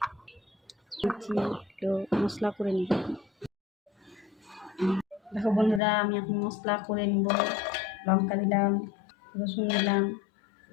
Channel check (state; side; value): drops out; right; at 5.8 s